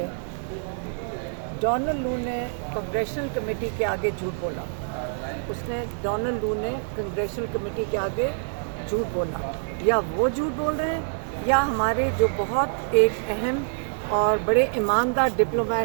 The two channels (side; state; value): left; silent; digital silence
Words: ڈونلڈ لو نے کنگریشنل کمیٹی کے آگے جھوٹ بولا، ڈونلڈ لو نے کنگریشنل کمیٹی کے آگے جھوٹ بولا، یا وہ جھوٹ بول رہے ہیں یا ہمارے جو بہت ایک اہم اور بڑے ایماندار ڈپلومیٹ